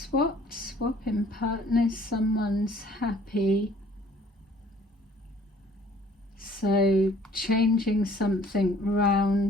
swapping partners, someone's happy. So changing something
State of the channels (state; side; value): normal; both; correlation 0.56